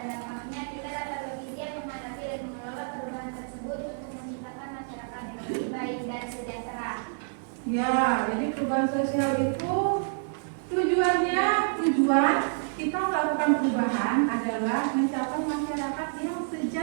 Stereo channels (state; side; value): silent; left; 59 dB below the other